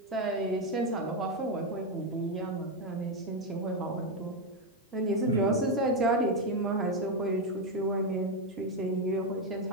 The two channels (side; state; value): both; normal; correlation 0.07